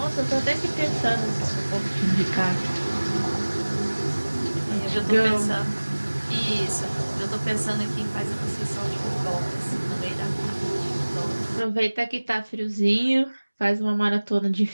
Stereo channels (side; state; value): both; inverted; correlation -1.00